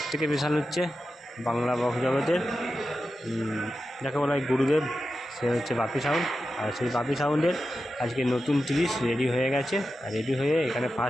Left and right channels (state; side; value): normal; both; correlation 0.91